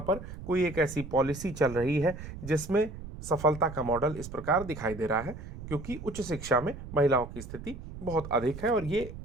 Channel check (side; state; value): right; noise; rumble, 11 dB below the sound